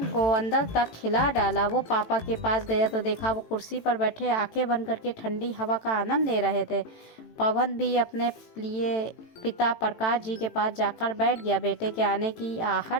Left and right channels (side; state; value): right; late; 18 ms